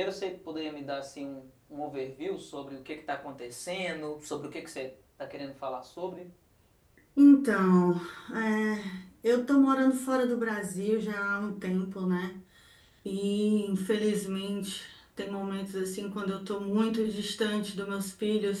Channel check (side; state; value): both; identical; correlation 1.00